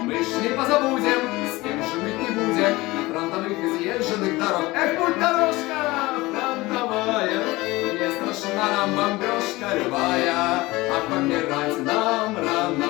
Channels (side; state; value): right; quieter; 20.6 dB